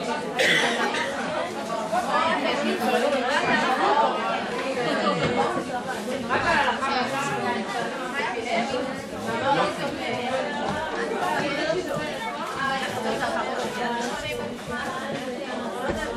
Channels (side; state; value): both; identical; correlation 1.00